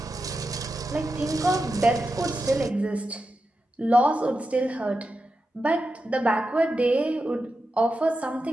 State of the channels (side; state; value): both; normal; correlation 0.89